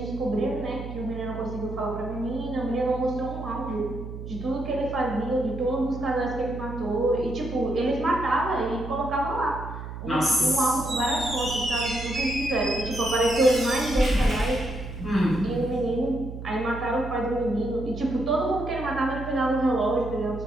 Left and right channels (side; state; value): right; noise; hum, 9 dB below the sound